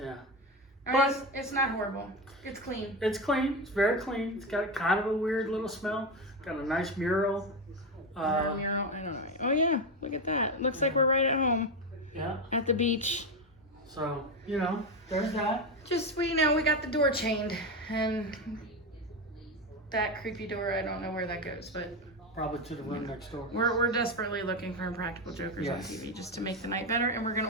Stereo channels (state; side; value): normal; both; correlation 0.15